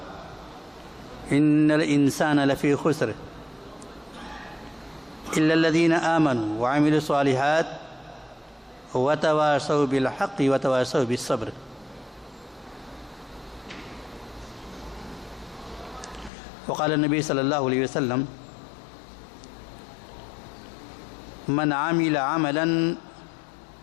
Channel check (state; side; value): drops out; right; at 16.3 s